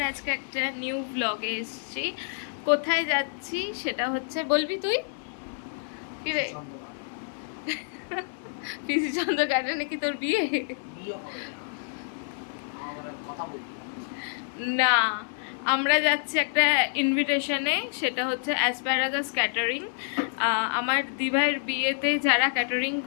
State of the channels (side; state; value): right; silent; 59 dB below the other